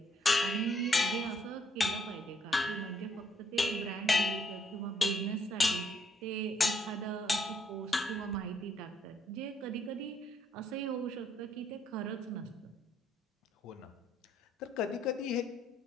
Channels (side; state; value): both; normal; correlation 0.71